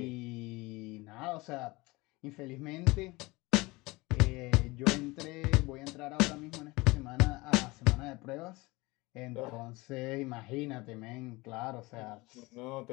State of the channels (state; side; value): quieter; right; 22.7 dB